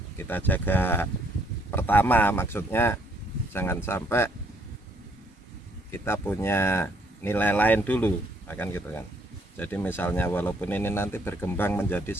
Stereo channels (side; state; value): both; normal; correlation 0.67